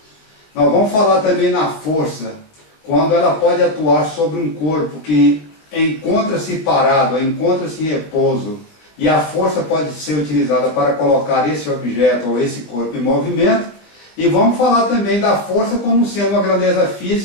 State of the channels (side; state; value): right; late; 19 ms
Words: Nós vamos falar também na força, quando ela pode atuar sobre um corpo que encontra-se parado, encontra-se em repouso, e a força pode ser utilizada para colocar esse objeto ou esse corpo em movimento. E vamos falar também da força como sendo uma grandeza